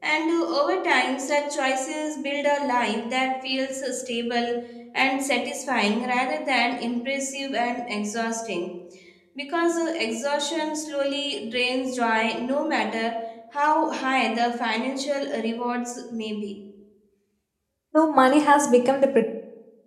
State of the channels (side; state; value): both; identical; correlation 1.00